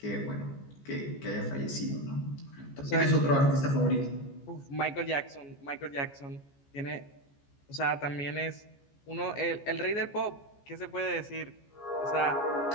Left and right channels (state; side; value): late; right; 14 ms